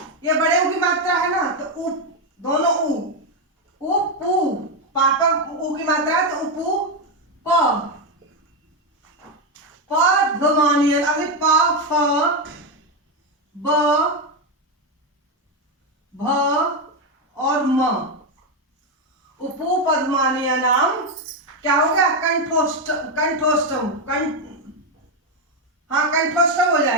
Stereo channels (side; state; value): both; normal; correlation 0.07